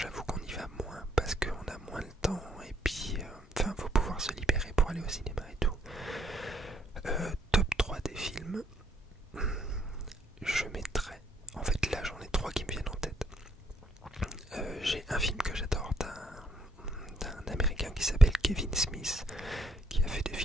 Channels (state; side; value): normal; both; correlation 0.71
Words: qu'on y va moins parce qu'on a moins le temps et puis faut pouvoir se libérer pour aller au cinéma et tout. Top 3 des films, je mettrais, en fait là j'en ai 3 qui me viennent en tête. J'ai un film que j'adore d'un américain qui s'appelle Kevin Smith, qui a fait des